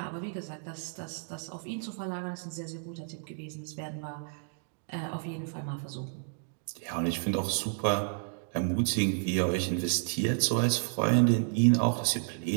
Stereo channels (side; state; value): left; silent; 57 dB below the other